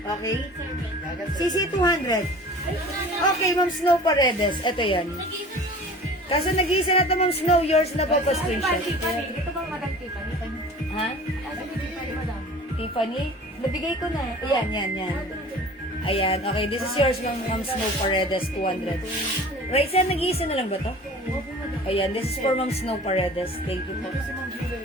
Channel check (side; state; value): both; normal; correlation 0.43